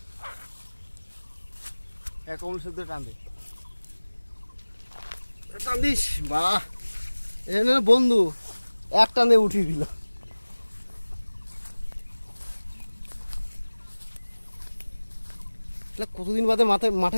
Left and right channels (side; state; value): both; inverted; correlation -1.00